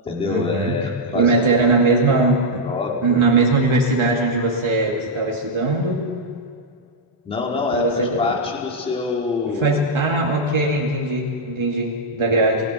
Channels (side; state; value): both; normal; correlation -0.04